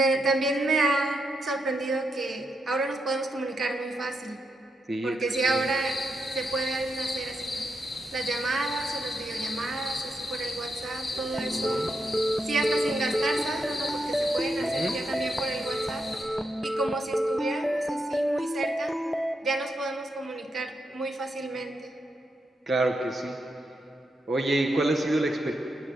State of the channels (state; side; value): normal; both; correlation 0.83